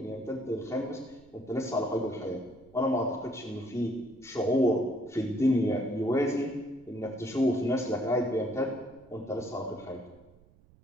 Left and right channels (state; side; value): noise; right; rumble, 27 dB below the sound